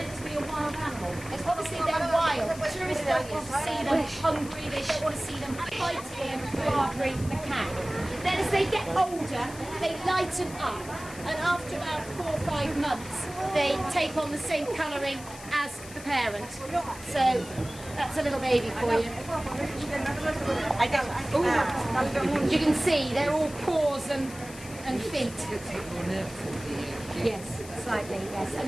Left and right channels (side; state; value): left; noise; hiss, 16 dB below the sound